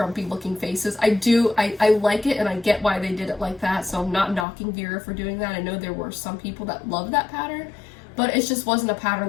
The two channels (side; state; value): right; drops out; at 4.5 s